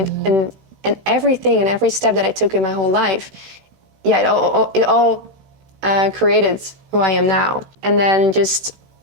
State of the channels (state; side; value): late; left; 16 ms